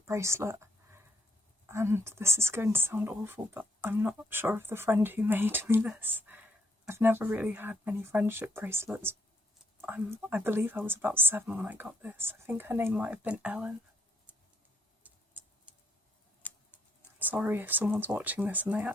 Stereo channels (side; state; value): both; normal; correlation 0.71